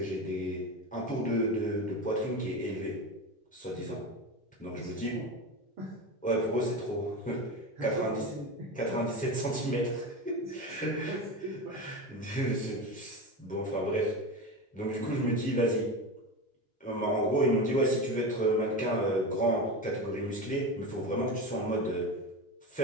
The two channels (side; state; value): both; normal; correlation 0.23